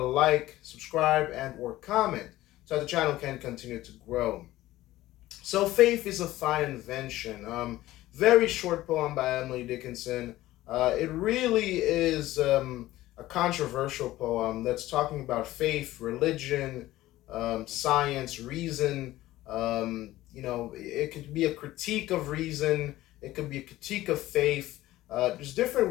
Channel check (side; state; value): right; quieter; 16.1 dB